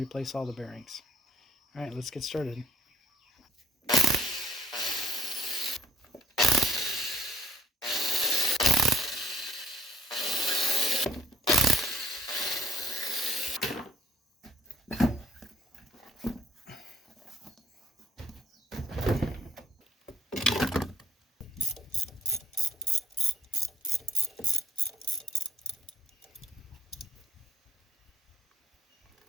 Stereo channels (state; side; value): normal; both; correlation 0.66